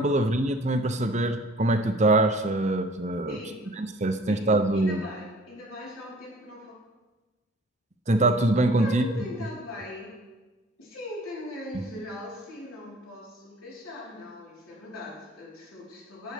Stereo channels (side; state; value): both; normal; correlation 0.50